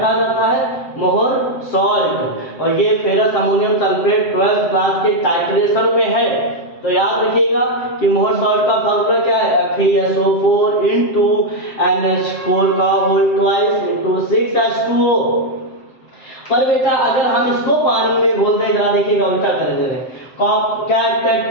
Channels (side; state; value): right; late; 7.7 ms